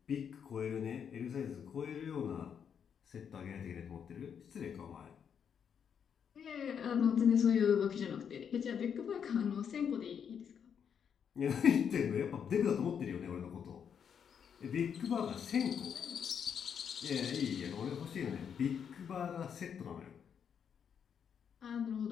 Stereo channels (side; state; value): right; quieter; 7.6 dB